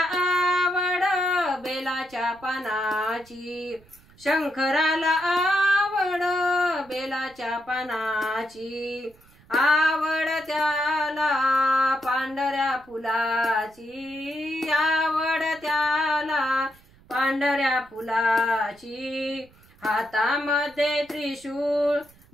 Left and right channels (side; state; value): right; noise; rumble, 28 dB below the sound